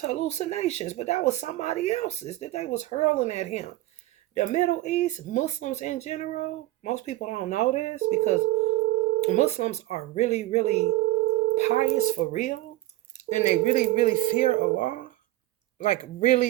hallucinations, but that was somebody else's that they was hurling at him. The Middle East, Muslims in general, most people don't know this because Muslims are really, really pious for real. And they really, really fear Allah. Like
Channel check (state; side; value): quieter; left; 17.1 dB